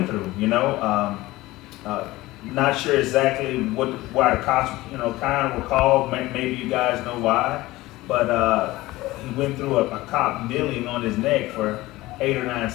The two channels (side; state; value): right; quieter; 18.6 dB